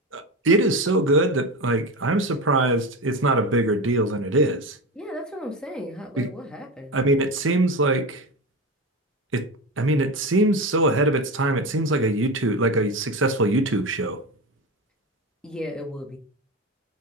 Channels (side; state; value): both; normal; correlation 0.22